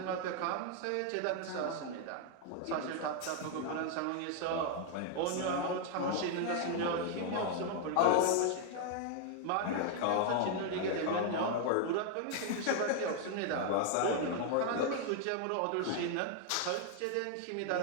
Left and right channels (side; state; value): both; different; correlation 0.00